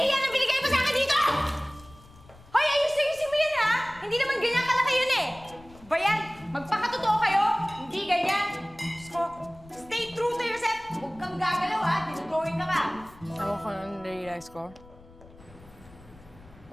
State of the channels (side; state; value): left; noise; rumble, 23 dB below the sound